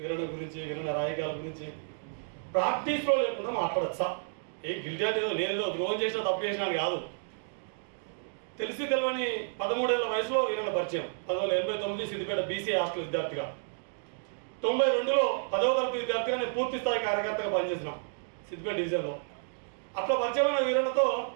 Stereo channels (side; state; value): left; silent; digital silence